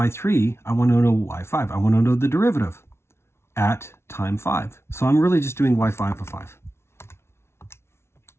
I want to know y5. I want to know the derivative at time 5. So I'm really just doing y5 of 5.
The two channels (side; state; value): right; late; 0.12 ms